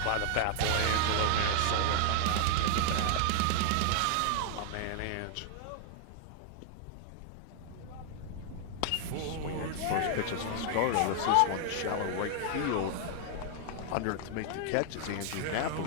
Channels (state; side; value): different; both; correlation 0.00